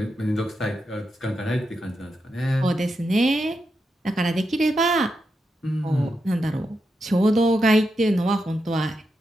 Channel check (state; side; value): normal; both; correlation 0.86